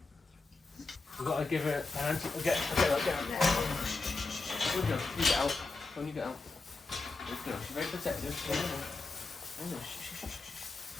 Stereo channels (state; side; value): quieter; right; 3.7 dB